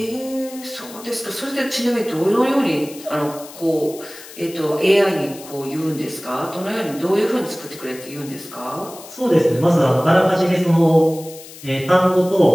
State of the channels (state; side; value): noise; left; hiss, 17 dB below the sound